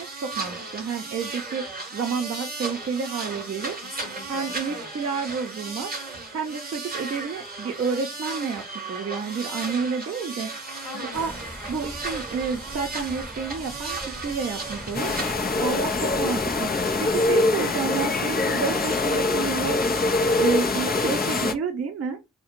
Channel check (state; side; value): normal; both; correlation 0.43